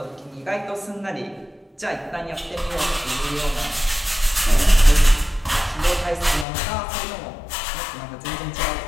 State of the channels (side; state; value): right; drops out; at 6.5 s